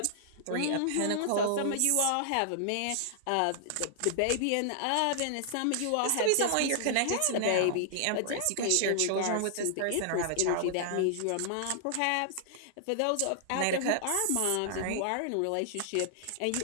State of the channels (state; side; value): different; both; correlation -0.01